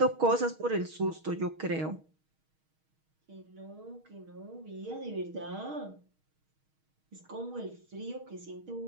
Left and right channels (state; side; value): late; left; 6.4 ms